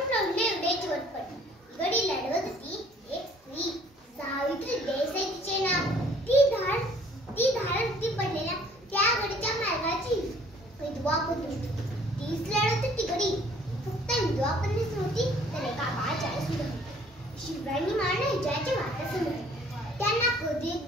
एवढे चोटपट. गडी लढवत होती एक स्त्री, सावित्री देसाई तिचे नाव. ती धारती पडलेल्या त्या गडीच्या मार्गाची विधवा पत्नी. तीच लढत होती गडी. फक्त विधवा पत्नीच नव्हती तर एका बाळाच्या सुद्धा. शिवरायांनी मारणे ज्याचे वाटासमोर त्यांना कधी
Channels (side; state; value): both; normal; correlation 0.57